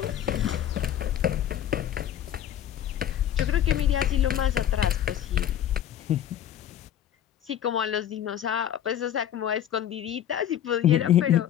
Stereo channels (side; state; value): right; quieter; 10.6 dB